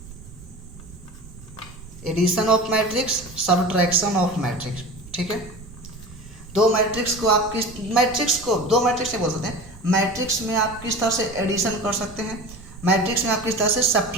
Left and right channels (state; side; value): noise; right; rumble, 17 dB below the sound